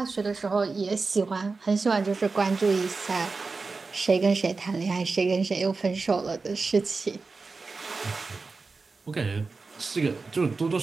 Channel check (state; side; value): quieter; left; 4.1 dB